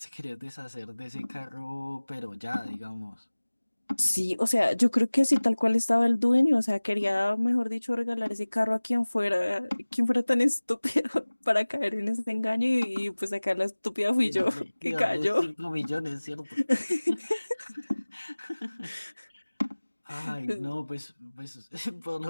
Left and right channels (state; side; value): inverted; both; correlation -1.00